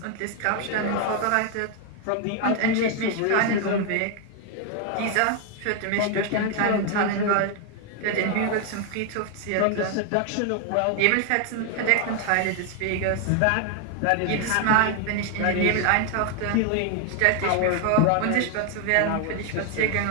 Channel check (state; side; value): different; both; correlation 0.01